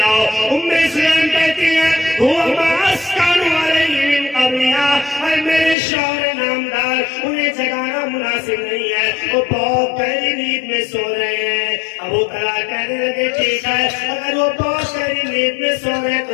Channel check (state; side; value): drops out; right; at 5.8 s